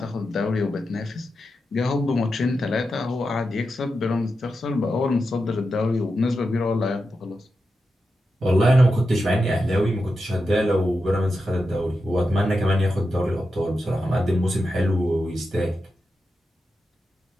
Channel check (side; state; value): both; normal; correlation 0.89